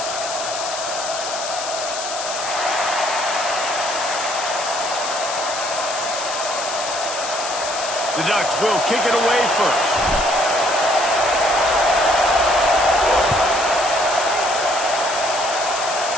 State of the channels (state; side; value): noise; left; hiss, 6 dB below the sound